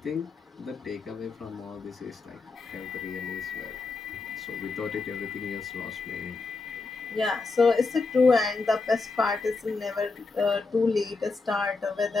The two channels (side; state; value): right; quieter; 4.0 dB